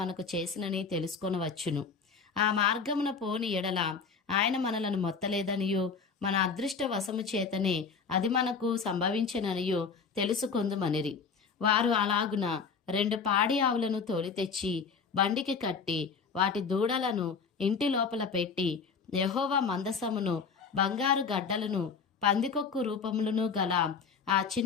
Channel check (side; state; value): right; quieter; 5.5 dB